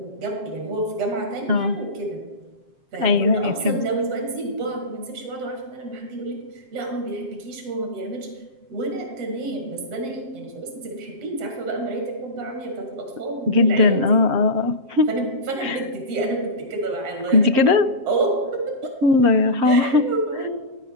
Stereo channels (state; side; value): late; left; 7.5 ms